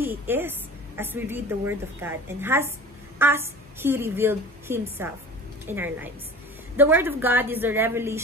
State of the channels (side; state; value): both; normal; correlation 0.39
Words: is as we read the Word of God and as He revealed Himself in our lives. The Word of God is the